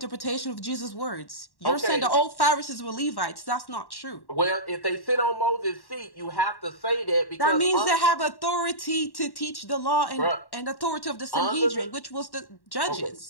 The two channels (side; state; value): right; late; 1.1 ms